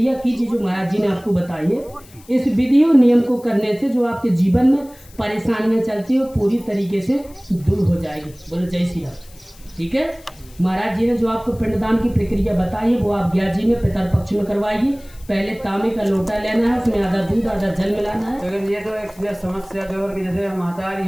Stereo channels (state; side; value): noise; left; hiss, 25 dB below the sound